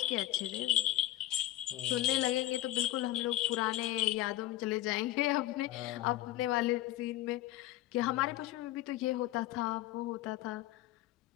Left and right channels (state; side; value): quieter; right; 15.3 dB